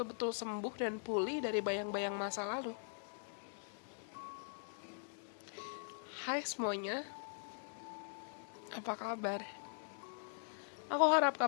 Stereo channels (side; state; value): right; silent; digital silence